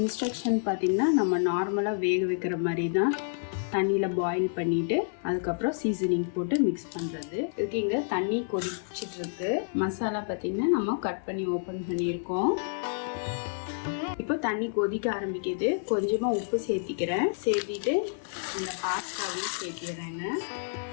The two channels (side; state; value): right; silent; 59 dB below the other